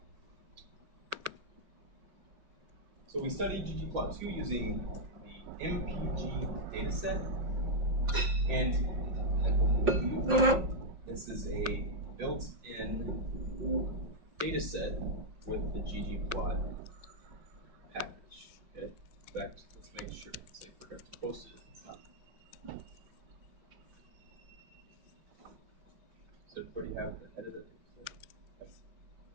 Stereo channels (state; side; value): late; left; 5.6 ms